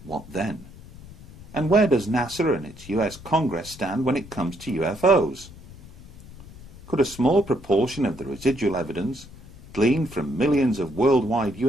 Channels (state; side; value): noise; left; rumble, 18 dB below the sound